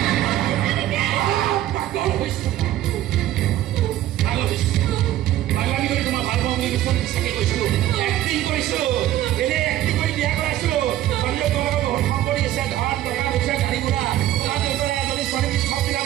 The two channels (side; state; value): left; quieter; 13.6 dB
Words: পাগল হৈছো পাগলামি কৰি তোমাৰ ভাল পাওঁ বুলি চাগে কৈছিলো এক্টিং কৰিছো এনে এক্টিং কৰি বিয়া কৰাইছিলো ছোৱালীয়ে তোমালোকৰ বহুত সম্পত্তি আছে ধন টকা পইচা গাড়ী ঘোঁৰা তোমাৰ দেউতাৰে এজনী ছোৱালী